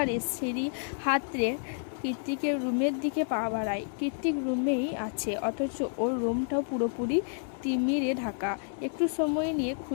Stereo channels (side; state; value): right; silent; 58 dB below the other